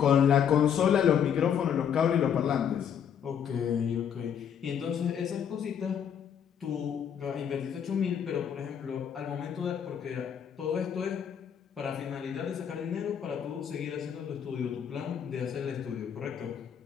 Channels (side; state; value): right; quieter; 8.3 dB